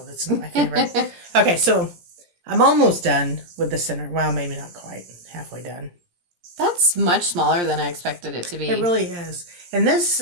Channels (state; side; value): late; left; 17 ms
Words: That's not my favorite. Okay, so I'm almost done with the center. Well, maybe not quite. Halfway done. That's much smaller than I expected it to be. It really is. And this